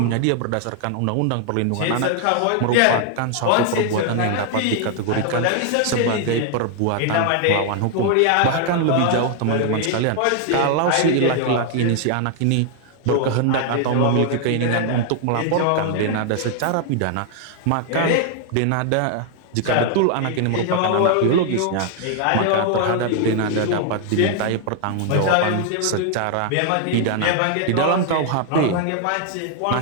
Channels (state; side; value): different; both; correlation 0.00